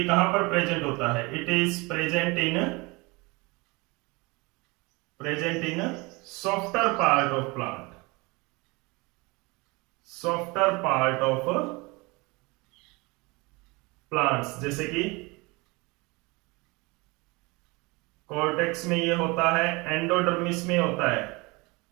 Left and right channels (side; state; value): left; quieter; 25.6 dB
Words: कहां पर प्रेजेंट होता है, it is present in softer part of plant, softer part of plants, जैसे कि कॉर्टेक्स में ये होता है, एंडोडर्मिस में होता है,